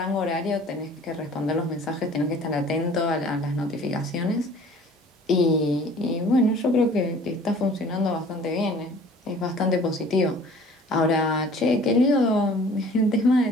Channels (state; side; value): normal; both; correlation 0.49